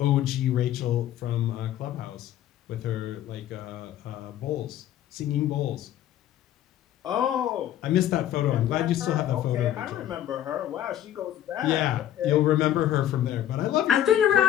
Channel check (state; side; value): quieter; right; 11.8 dB